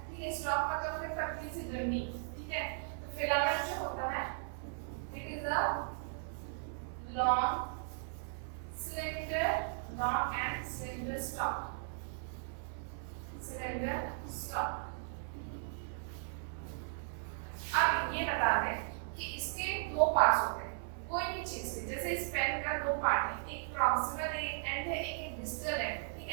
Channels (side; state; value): left; silent; digital silence